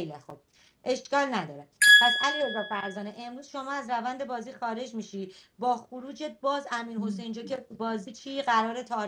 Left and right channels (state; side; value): identical; both; correlation 1.00